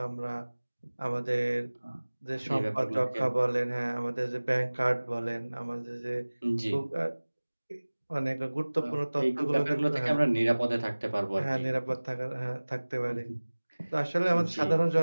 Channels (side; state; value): both; inverted; correlation -1.00